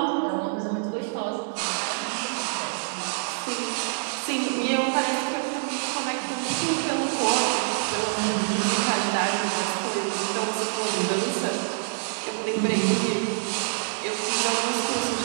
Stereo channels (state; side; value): silent; left; digital silence